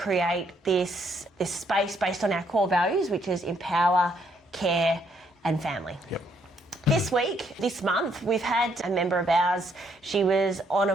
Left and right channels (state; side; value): normal; both; correlation 0.71